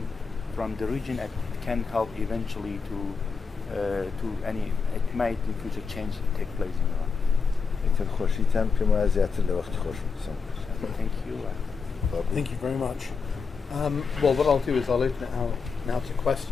from the region, it can help eventually it might in future change take place in Iran. خۆشیتان پێم وایە زیاتر لە وەخت خۆش بچم. Thank you. Thank you very much. Well, what I'll do is I'll open it out now to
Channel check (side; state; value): right; quieter; 5.3 dB